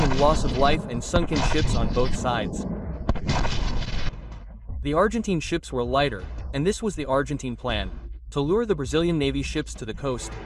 loss of life and sunken ships on both sides. The Argentine ships were lighter, and this was the Argentine plan: to lure the Brazilian Navy ships to the coast,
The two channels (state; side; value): identical; both; correlation 1.00